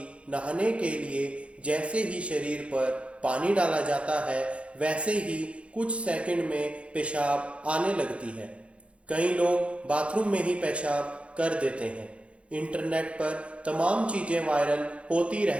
नहाने के लिए जैसे ही शरीर पर पानी डाला जाता है वैसे ही कुछ सेकंड में पेशाब आने लगती है। कई लोग बाथरूम में ही पेशाब कर देते हैं। इंटरनेट पर तमाम चीजें वायरल होती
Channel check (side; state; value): left; late; 0.061 ms